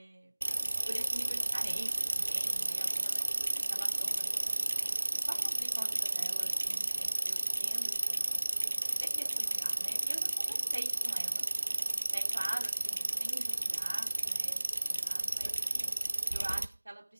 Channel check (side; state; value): both; inverted; correlation -1.00